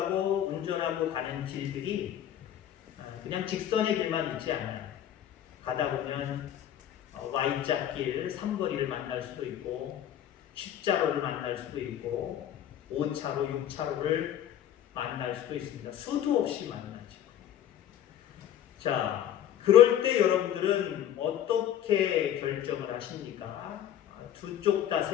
운전하고 가는 길들이 그냥 직선의 길만 있지 않아요. 가다 보면 Y자길, 삼거리를 만날 수도 있고 십자로를 만날 수도 있고 5차로, 6차로를 만날 수도 있습니다. 수도 없이 만나죠. 자, 그럴 때 여러분들은 어떻게 결정을 하십니까? 두 쪽 다,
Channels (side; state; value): right; quieter; 10.7 dB